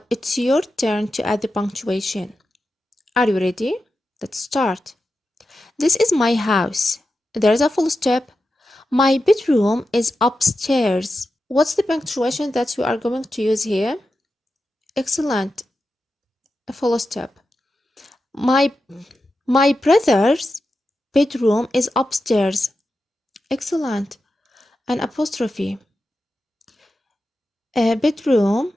it's your turn to add the punctuation. Are you ready? Let's start. This is my house. There's a full stop. My bedroom is upstairs. What's the punctuation that you are going to use here? Excellent. A full stop. My brother's bedroom is upstairs. Excellent. An apostrophe. A bedroom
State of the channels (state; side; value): normal; both; correlation 0.90